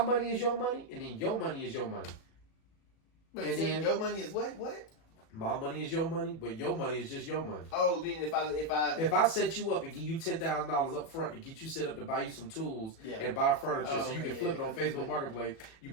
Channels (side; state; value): right; late; 37 ms